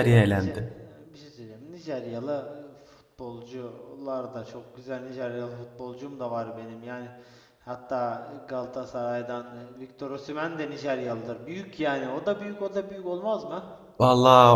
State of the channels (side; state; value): both; identical; correlation 1.00